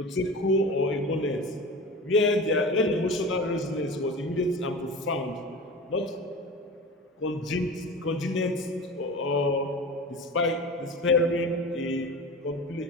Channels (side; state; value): both; normal; correlation 0.32